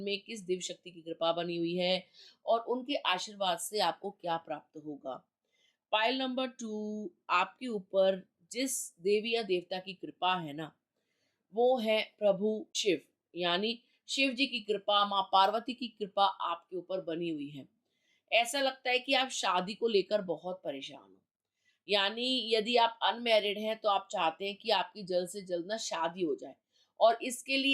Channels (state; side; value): identical; both; correlation 1.00